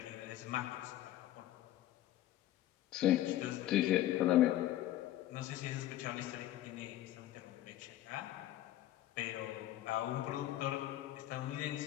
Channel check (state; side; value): quieter; right; 13.7 dB